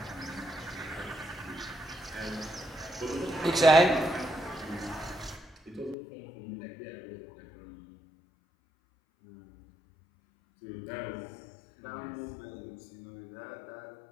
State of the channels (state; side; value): drops out; right; at 6.0 s